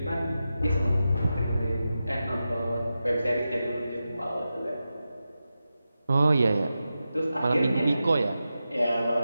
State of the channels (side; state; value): both; inverted; correlation -0.91